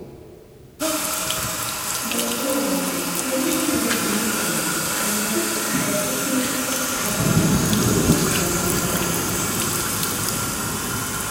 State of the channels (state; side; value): identical; both; correlation 1.00